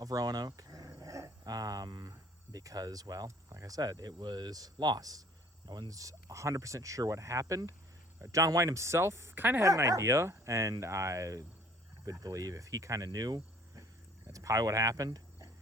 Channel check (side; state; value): both; normal; correlation 0.55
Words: Roanoke because, well, like I said, it was lost. No one's 100% sure what happened. John White himself kind of had an idea, and I would believe if he kind of knew, that's probably what happened.